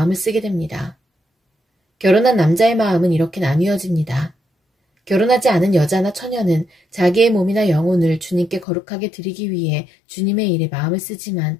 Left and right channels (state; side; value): drops out; right; at 8.7 s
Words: 쓰게 됩니다. 결혼한 남자의 마음은 이렇게 나뉘어집니다. 결혼하지 않은 여자나 처녀는 자기의 몸이나 영혼을 주님께 거룩하게 드리기 위해 주님의 일에 마음을